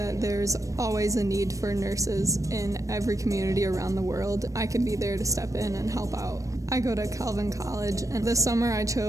there's always a need for nurses in every community around the world. I could be there to step in and help out. I go to Calvin College, and this summer I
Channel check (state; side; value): late; left; 0.16 ms